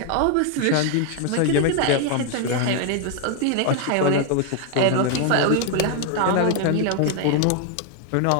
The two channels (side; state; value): both; different; correlation 0.00